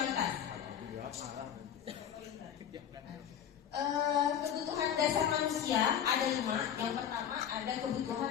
Kebutuhan dasar manusia ada 5. Yang pertama ada kebutuhan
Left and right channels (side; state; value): right; quieter; 9.1 dB